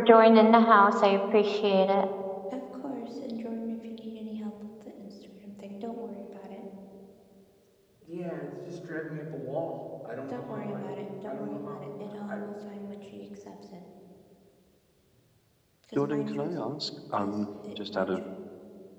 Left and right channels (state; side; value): identical; both; correlation 1.00